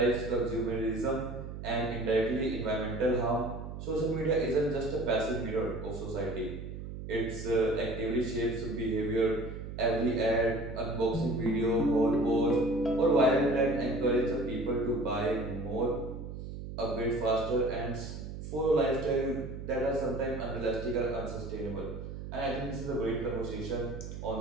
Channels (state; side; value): noise; right; hum, 9 dB below the sound